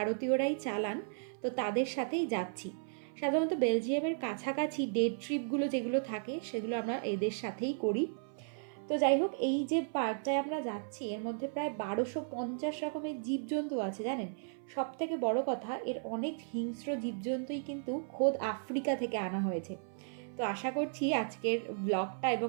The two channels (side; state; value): left; silent; 54 dB below the other